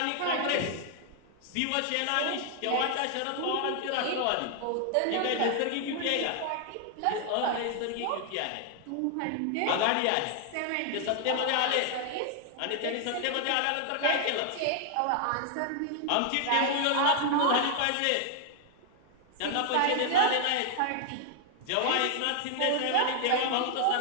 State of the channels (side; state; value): both; different; correlation 0.00